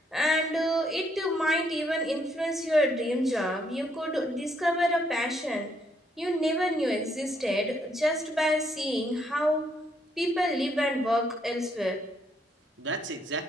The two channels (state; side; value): normal; both; correlation 0.72